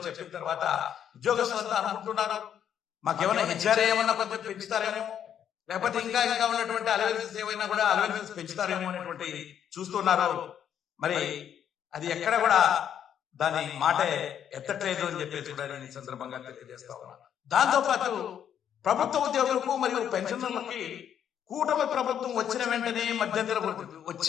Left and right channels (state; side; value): quieter; right; 9.2 dB